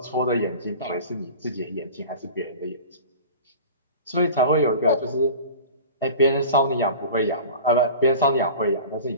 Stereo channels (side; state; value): both; inverted; correlation -0.38